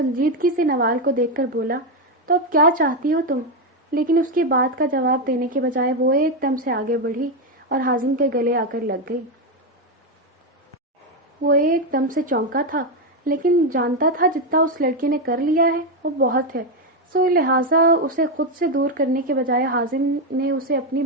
سے نوال کو دیکھ کر بولا، تو اب کیا چاہتی ہو تم؟ لیکن اس کی بات کا جواب دینے کے بجائے وہ ایک دم سے آگے بڑھی اور حازم کے گلے آ کر لگ گئی۔ وہ ایک دم سے چونکا تھا، لیکن جانتا تھا جتنا اس لڑکی نے کر لیا ہے وہ بہت ہے، سو لہٰذا اسے خود سے دور کرنے کے بجائے حازم نے اسے اپنی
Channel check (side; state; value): both; normal; correlation 0.07